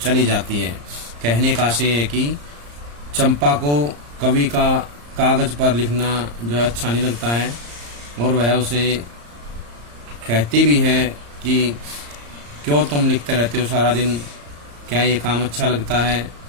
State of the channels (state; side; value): late; left; 34 ms